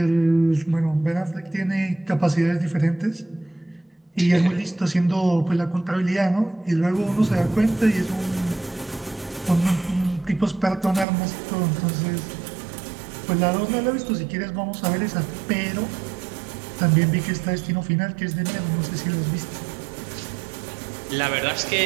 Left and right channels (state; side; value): drops out; left; at 11.1 s